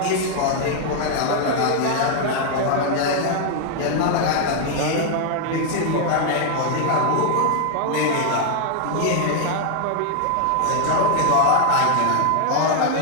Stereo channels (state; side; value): different; both; correlation 0.00